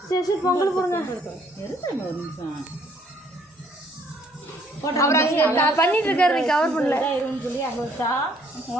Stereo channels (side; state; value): both; normal; correlation 0.64